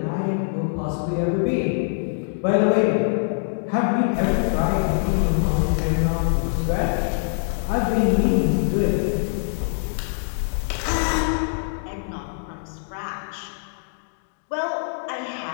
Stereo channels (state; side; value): silent; right; digital silence